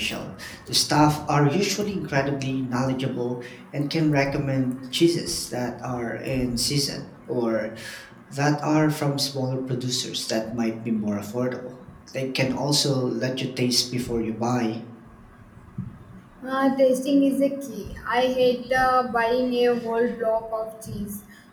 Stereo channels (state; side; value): identical; both; correlation 1.00